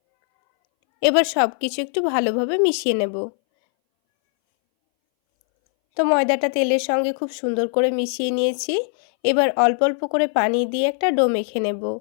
এবার সব কিছু একটু ভালোভাবে মিশিয়ে নেব। তো ময়দাটা তেলের সঙ্গে খুব সুন্দর করে মিশিয়ে নিয়েছি। এবার অল্প অল্প করে পানি দিয়ে একটা ডো মেখে নেব।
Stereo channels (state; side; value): silent; right; 62 dB below the other